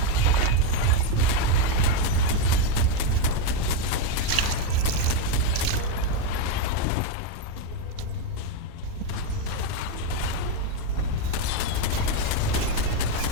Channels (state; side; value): different; both; correlation 0.03